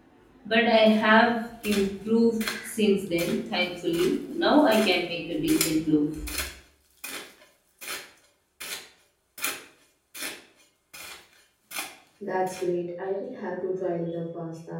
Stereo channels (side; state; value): both; identical; correlation 1.00